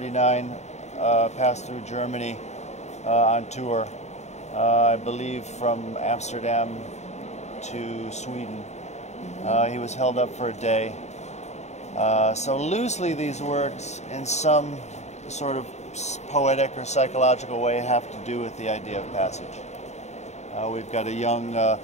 passed through Germany on tour, I believe from Amsterdam to Sweden. He was held up for a day. So loosely these works in some sort of poetic or psychological way have to do with the idea of passage. We've got a young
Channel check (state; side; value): late; right; 0.33 ms